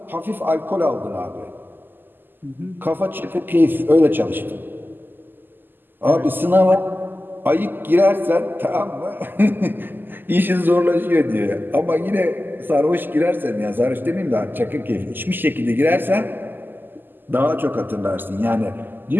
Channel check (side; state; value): left; late; 0.092 ms